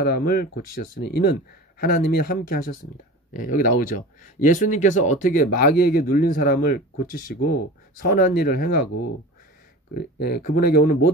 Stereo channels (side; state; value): both; normal; correlation 0.35